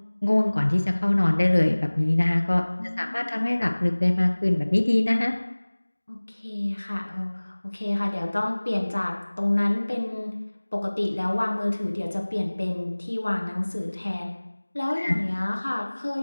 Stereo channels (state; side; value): inverted; both; correlation -1.00